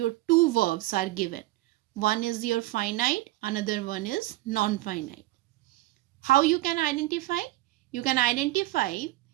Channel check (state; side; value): quieter; left; 18.1 dB